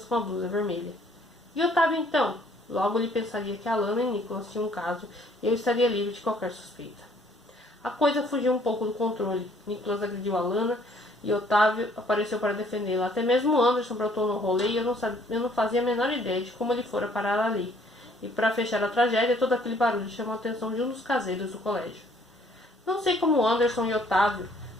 com a blusa vermelha. E Otávio então? Logo ele pensaria que Alana e Nicholas tinham um caso e eu estaria livre de qualquer suspeita. A coisa fugiu um pouco do controle. Nicholas agrediu Alana e Otávio apareceu para defendê-la. Até mesmo Anderson brotou no rolê e eu não fazia a menor ideia de como ele fora parar ali. E para fechar a tragédia, todo aquele barulho chamou a atenção de um dos caseiros do colégio. Não sei como Anderson e Otávio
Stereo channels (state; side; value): normal; both; correlation 0.62